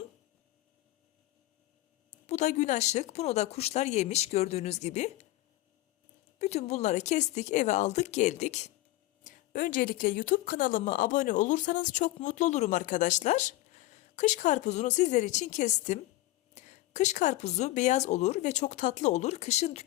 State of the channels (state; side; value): quieter; right; 17.1 dB